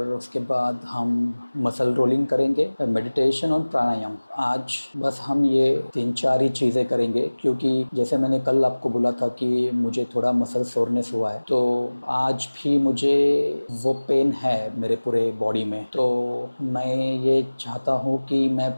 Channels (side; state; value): both; inverted; correlation -1.00